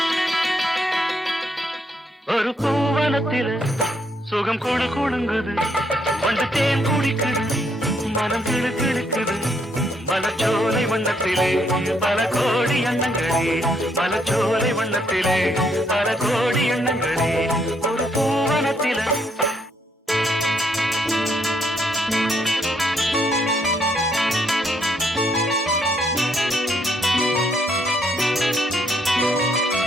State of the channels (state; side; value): normal; both; correlation 0.73